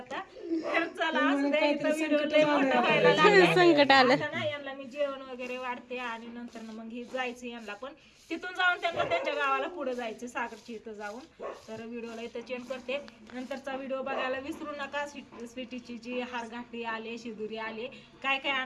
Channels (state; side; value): identical; both; correlation 1.00